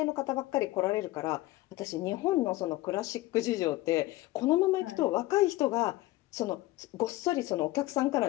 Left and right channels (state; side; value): quieter; right; 18.1 dB